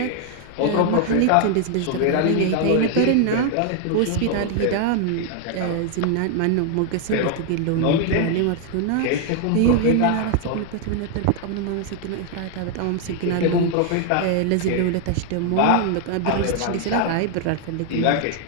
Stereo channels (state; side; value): different; both; correlation 0.00